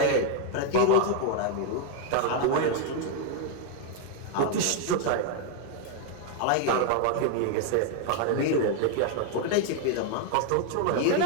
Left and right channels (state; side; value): different; both; correlation 0.00